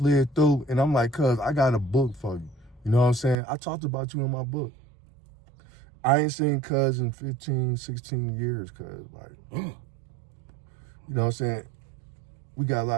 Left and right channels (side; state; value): left; drops out; at 3.4 s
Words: through and I'm like, cuz I got a book for you. You know what I'm saying? I talked about you in my book. I ain't seen cuz in 15, 16 years, cuz like, you know what I'm saying? We got a